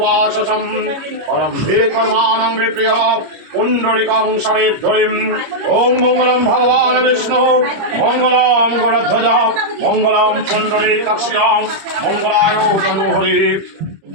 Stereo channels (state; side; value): late; left; 25 ms